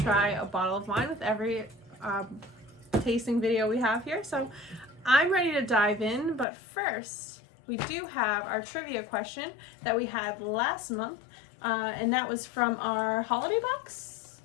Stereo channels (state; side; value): drops out; right; at 6.5 s